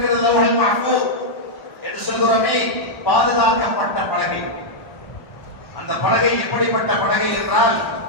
லவ்ஹுல் மஹ்ஃபூஸ் என்று சொல்கிறோமே, பாதுகாக்கப்பட்ட பலகை. அந்த பலகை எப்படிப்பட்ட பலகை என்றால்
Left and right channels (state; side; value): late; right; 1.1 ms